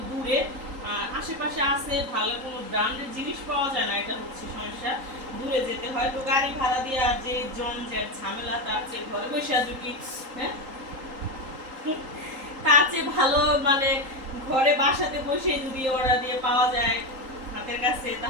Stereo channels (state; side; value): late; left; 3.8 ms